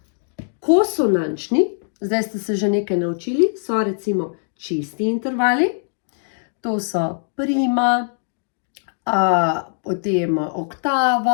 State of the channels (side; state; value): right; silent; digital silence